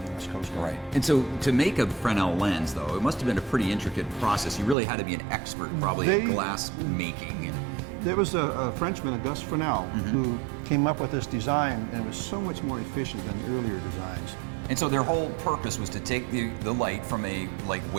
U.S. Coast Guard. Right. And so to make a Fresnel lens, though, it must have been a pretty intricate process. You really had to be an expert, probably, at glass making. There was a Frenchman, Auguste Fresnel, who came up with this design, and it was so much more efficient than the earlier designs. And so their whole purpose was to take the light from a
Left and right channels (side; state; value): left; drops out; at 4.8 s